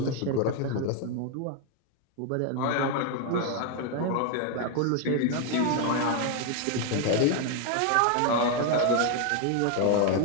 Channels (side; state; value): both; different; correlation 0.01